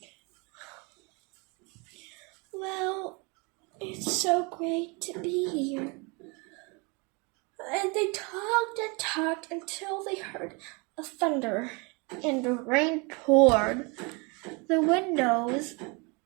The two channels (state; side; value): quieter; left; 30.5 dB